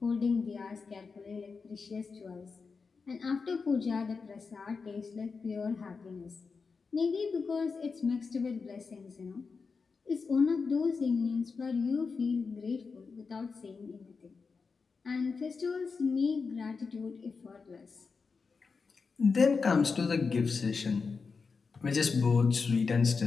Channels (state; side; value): quieter; right; 4.9 dB